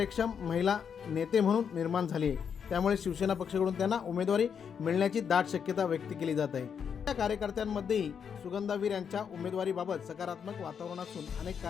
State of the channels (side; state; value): right; quieter; 7.2 dB